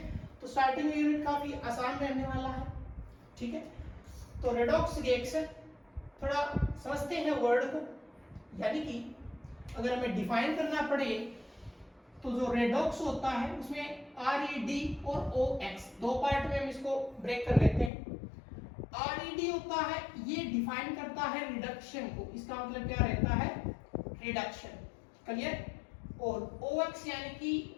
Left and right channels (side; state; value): right; drops out; at 17.9 s